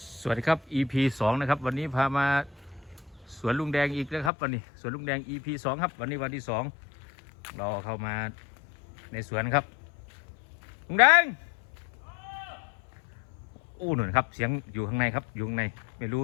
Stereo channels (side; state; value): right; drops out; at 4.3 s